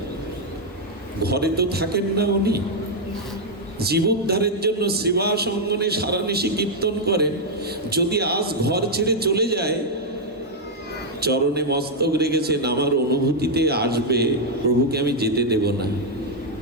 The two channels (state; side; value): normal; both; correlation -0.01